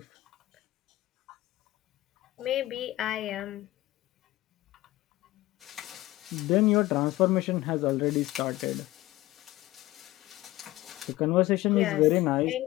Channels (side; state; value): right; quieter; 17.4 dB